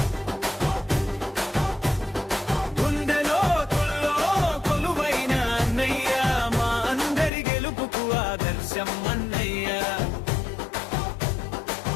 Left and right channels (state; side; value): drops out; right; at 7.3 s